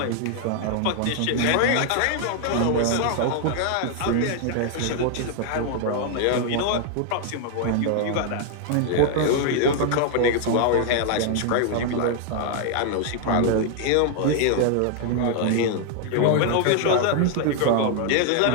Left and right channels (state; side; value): different; both; correlation 0.00